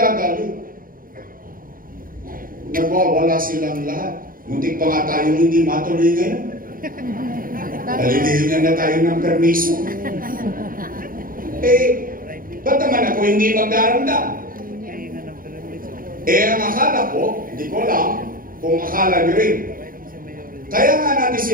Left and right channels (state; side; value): late; left; 0.41 ms